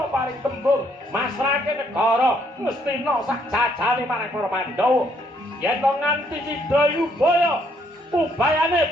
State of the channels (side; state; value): both; normal; correlation 0.69